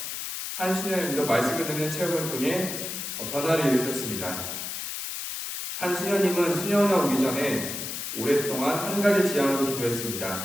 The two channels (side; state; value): left; noise; hiss, 5 dB below the sound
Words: 한수녀님도 말씀을 듣는 체험을 통해 변화를 이루셨습니다. 한수녀님은 수녀원에 오기 전에 오랫동안 한 가지 지향으로